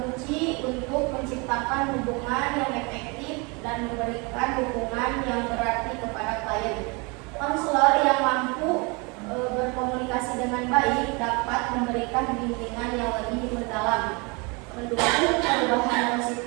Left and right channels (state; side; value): quieter; left; 29.6 dB